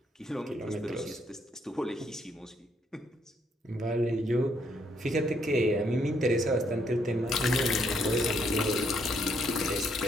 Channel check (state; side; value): normal; both; correlation 0.72